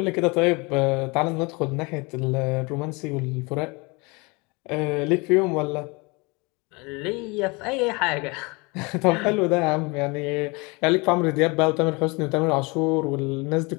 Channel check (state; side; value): quieter; right; 27.6 dB